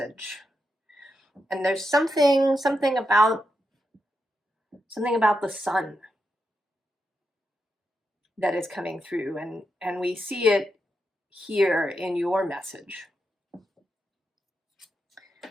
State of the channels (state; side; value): normal; both; correlation 0.85